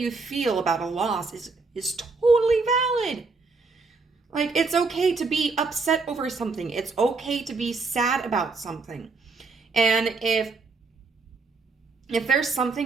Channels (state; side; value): quieter; left; 4.1 dB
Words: feel about a loss is totally valid. Like, it's okay to be upset over something. It's okay to be sad about something. And if there's